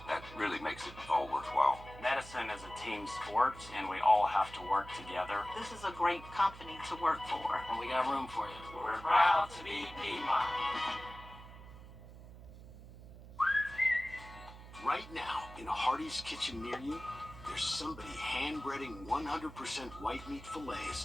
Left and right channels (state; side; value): noise; right; hum, 16 dB below the sound